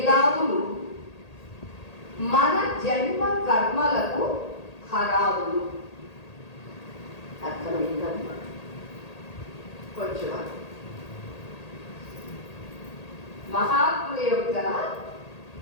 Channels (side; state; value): right; late; 1.8 ms